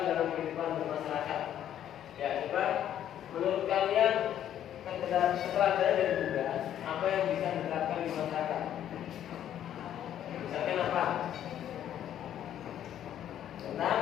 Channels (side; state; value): right; quieter; 10.7 dB